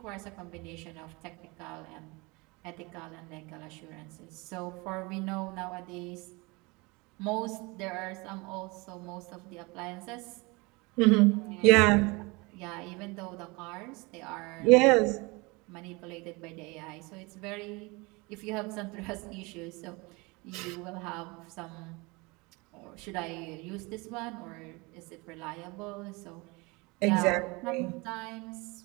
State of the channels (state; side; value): quieter; left; 26.0 dB